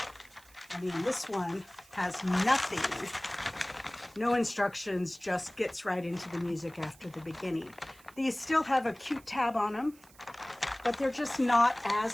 I mean, this one has nothing, no instructions, just gets right into the music after the beginning. These still have a cute tab on them, but they're just not as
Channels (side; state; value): right; noise; hiss, 25 dB below the sound